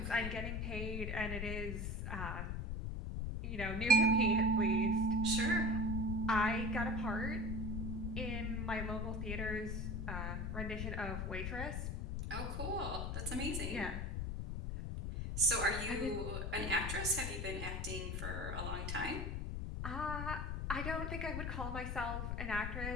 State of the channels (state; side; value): noise; left; rumble, 2 dB below the sound